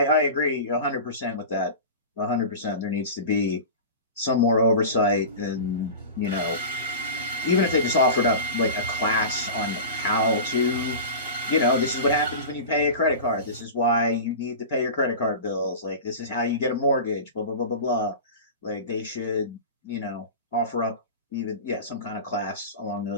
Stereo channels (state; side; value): inverted; both; correlation -0.30